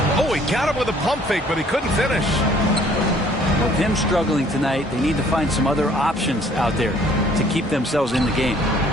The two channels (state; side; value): normal; both; correlation 0.58